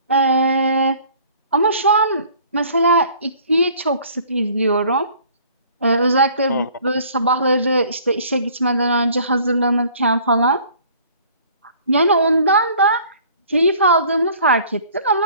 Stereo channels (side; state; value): both; inverted; correlation -0.53